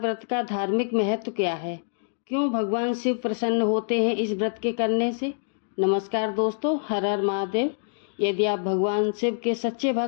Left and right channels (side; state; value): right; silent; digital silence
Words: का धार्मिक महत्व क्या है? क्यों भगवान शिव प्रसन्न होते हैं इस व्रत के करने से? नमस्कार दोस्तों, हर हर महादेव। यदि आप भगवान शिव के सच्चे